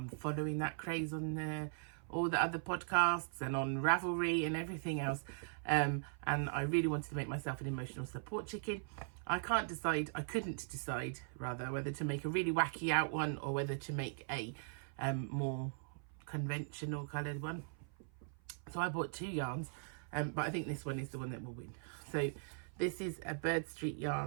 following that craze on all the other podcasts and on Ravelry and everything else, and I really wanted to make myself an emotional support chicken. I couldn't decide rather whether to make a really wacky out one or whether to make a more conventional coloured one. So I bought two yarns, but I think this one is the one that will win. So this is a Bird Street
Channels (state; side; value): silent; left; 51 dB below the other